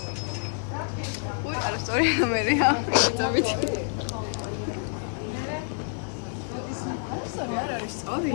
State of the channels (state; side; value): silent; right; 60 dB below the other